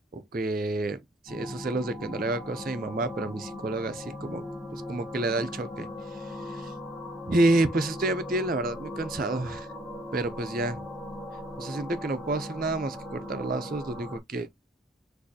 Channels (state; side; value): normal; both; correlation 0.61